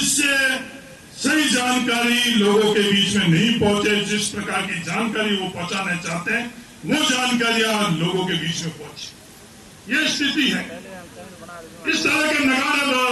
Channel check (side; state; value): both; identical; correlation 1.00